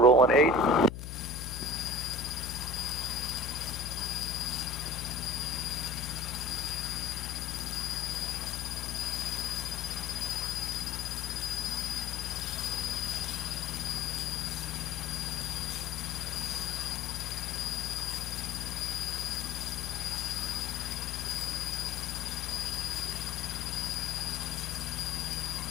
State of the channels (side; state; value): left; noise; hum, 7 dB below the sound